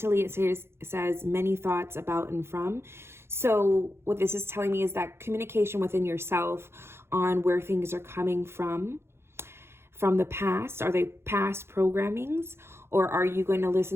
it says many thoughts about and from. So what this is telling me is that communication within yourself on where things are coming from the past. Are they past programmings, or are you going to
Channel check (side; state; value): left; late; 0.12 ms